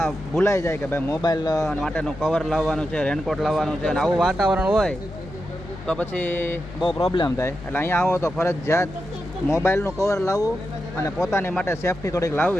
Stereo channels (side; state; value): left; noise; hum, 15 dB below the sound